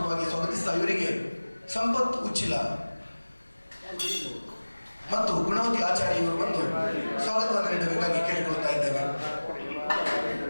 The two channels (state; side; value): inverted; both; correlation -1.00